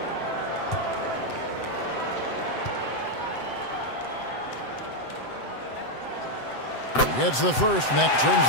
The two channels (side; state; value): right; late; 7.8 ms